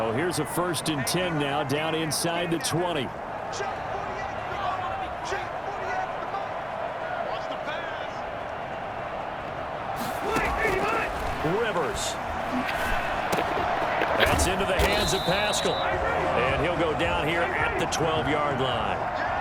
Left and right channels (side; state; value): both; identical; correlation 1.00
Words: here's a 1st and 10 now down inside the 20. Rivers. That's into the hands of Pascal. And he'll go down here at the 12-yard line.